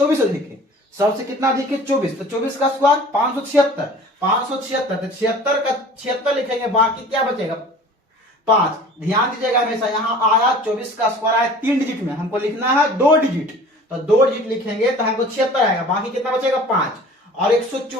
अधिक है, सबसे कितना अधिक है 24, तो 24 का स्क्वायर 576, 576 तो 76 का 76 लिखेंगे, बाकी क्या बचेगा 5। ध्यान दीजिएगा हमेशा, यहाँ आया 24 का स्क्वायर आया 3 डिजिट में, हमको लिखना है 2 डिजिट, तो 2 डिजिट लिखेंगे तो हमको 76 आएगा, बाकी कितना बचेगा 5। और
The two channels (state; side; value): normal; both; correlation 0.45